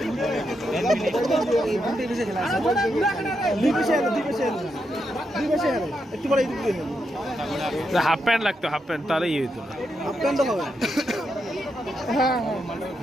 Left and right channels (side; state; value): both; normal; correlation 0.83